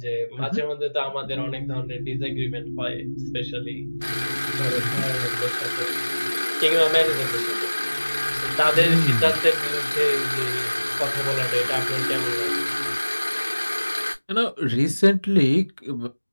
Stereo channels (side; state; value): both; inverted; correlation -1.00